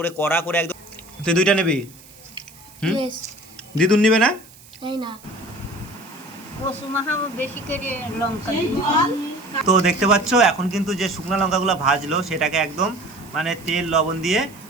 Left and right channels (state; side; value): noise; right; hiss, 23 dB below the sound